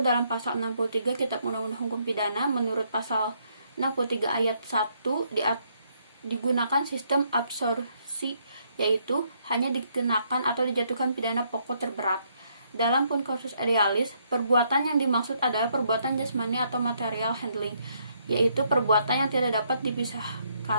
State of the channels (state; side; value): inverted; both; correlation -0.72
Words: dalam pasal 63 Kitab Undang-Undang Hukum Pidana. Menurut pasal 63 ayat 1 digunakan sistem absorpsi, yaitu hanya dikenakan atau dijatuhkan pidana pokok terberat. Dalam konkursus idealis, perbuatan yang dimaksud adalah perbuatan jasmani atau material handling, yaitu perbuatan yang tidak dapat